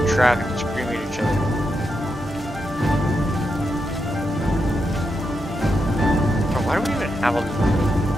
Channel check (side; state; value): both; normal; correlation 0.84